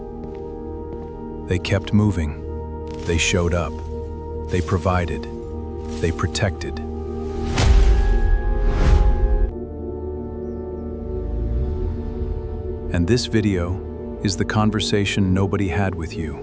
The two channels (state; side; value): identical; both; correlation 1.00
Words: They kept moving. They showed up. They provided. They protected. And this video is the conversation nobody had with